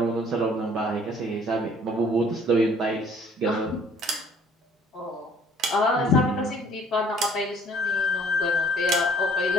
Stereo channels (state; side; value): normal; both; correlation 0.57